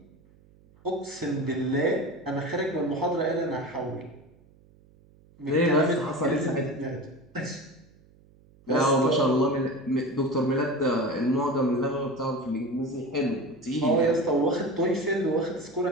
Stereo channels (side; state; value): right; noise; hum, 28 dB below the sound